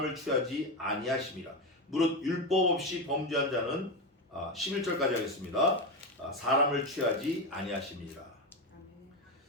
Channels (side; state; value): both; normal; correlation 0.14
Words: 취하지 아니하심이라. 무릇 율법 없이 범죄한 자는 11절까지 하겠습니다. 사람을 취하지 아니하심이라.